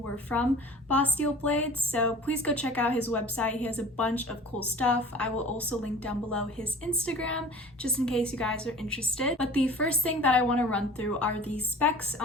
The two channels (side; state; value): both; normal; correlation 0.43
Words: from Boss Steel Blades, so please go check out his website. He has a bunch of cool stuff. I will also link down below his Instagram, just in case you guys are interested. But the first thing that I want to run through are the specs